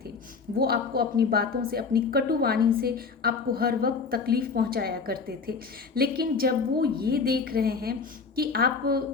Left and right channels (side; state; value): right; quieter; 5.0 dB